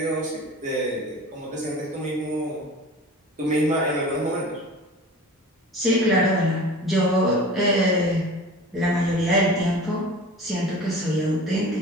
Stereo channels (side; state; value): both; normal; correlation 0.39